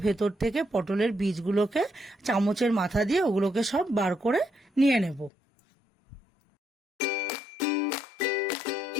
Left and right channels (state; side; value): drops out; right; at 5.3 s